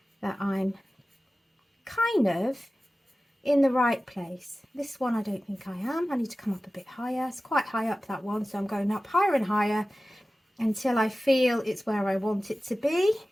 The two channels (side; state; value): both; normal; correlation 0.96